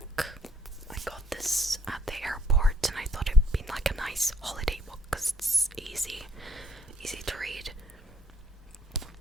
I got this at the airport, and I thought it'd be like a nice holiday book because it's easy to read.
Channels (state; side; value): normal; both; correlation 0.63